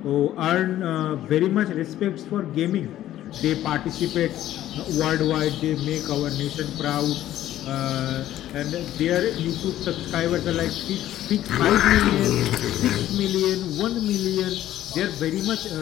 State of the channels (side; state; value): right; quieter; 13.1 dB